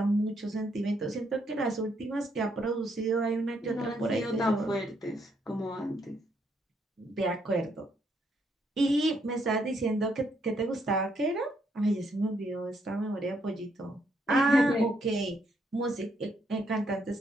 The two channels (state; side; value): normal; both; correlation 0.73